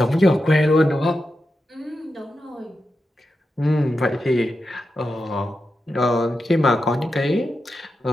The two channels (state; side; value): normal; both; correlation 0.89